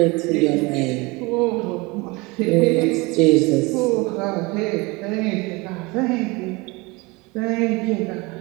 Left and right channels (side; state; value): left; quieter; 24.6 dB